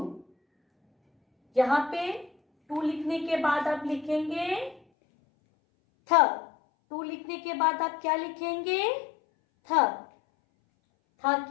यहाँ पे 2 लिखने के बाद आप लिखेंगे थ। 2 लिखने के बाद आप क्या लिखेंगे? थ। थ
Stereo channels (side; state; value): right; drops out; at 4.8 s